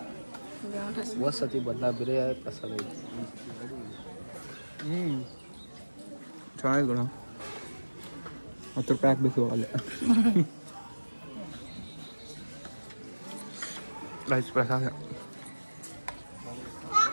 ಹೋದ ಸತಿ ಬದಲ ಬೇರೆ ಪ್ರಸಾದ ಐತಿ. ಚೆನ್ನಾಗಿದೆ ಗುಣ. 10 ರೂಪಾಯಿ ಹಾಕ್ಬೇಕು ಅಲ್ಲೇ. ರೈಸ್ ಪ್ರಸಾದ.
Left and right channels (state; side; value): inverted; both; correlation -1.00